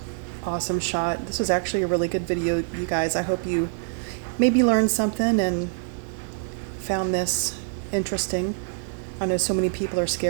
Awesome shot. This was actually a really good video, you guys. I hope you maybe learned something and found this interesting. I know so many people are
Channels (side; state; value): left; silent; digital silence